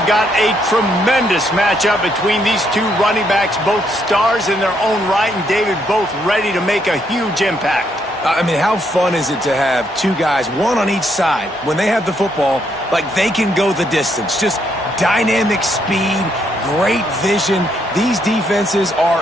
got a tremendous matchup between these two running backs, both stars in their own right, and David, both ready to make a huge impact. I mean, how fun is it to have two guys, one on each side, when they have the football, like they can go the distance. Just dynamic speed, great vision. These defenses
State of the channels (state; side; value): normal; both; correlation 0.74